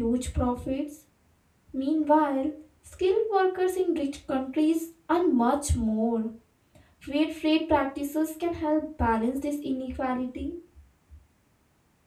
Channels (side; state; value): both; identical; correlation 1.00